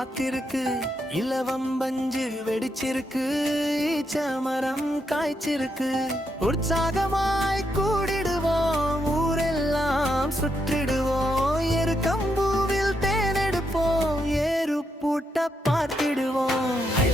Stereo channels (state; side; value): normal; both; correlation 0.81